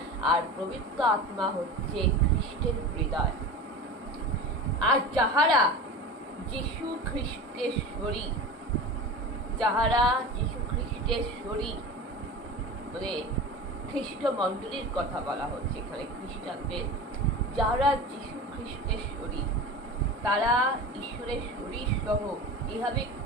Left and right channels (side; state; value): both; normal; correlation 0.32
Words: আর পবিত্র আত্মা হচ্ছে খ্রিস্টের হৃদয়। আর যাহারা যীশু খ্রিস্টের শরীর, যাহারা যীশু খ্রিস্টের শরীর, খ্রিস্ট মণ্ডলীর কথা বলা হচ্ছে এখানে, খ্রিস্টানদের, যারা যীশু খ্রিস্টের শরীর, তারা ঈশ্বরের শরীর সহ এভাবে